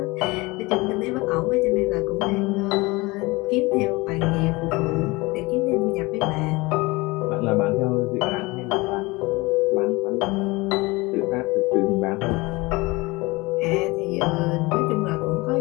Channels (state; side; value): quieter; right; 23.4 dB